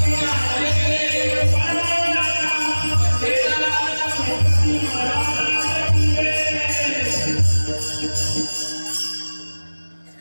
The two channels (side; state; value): both; inverted; correlation -1.00